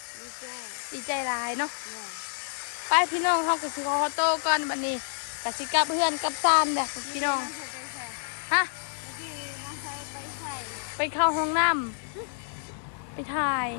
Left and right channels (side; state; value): right; silent; 59 dB below the other